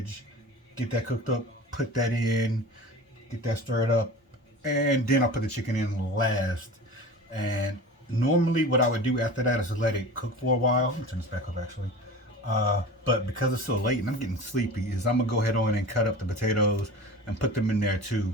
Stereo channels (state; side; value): normal; both; correlation 0.35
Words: get that cooked up, put that in, get that stirred up, and then I'll put the chicken in last. And normally, what I would do after that is let it cook for a while. Let me turn this back up actually. But because it's so late and I'm getting sleepy, is I'm gonna go ahead on and cut up the potatoes and put them in there too.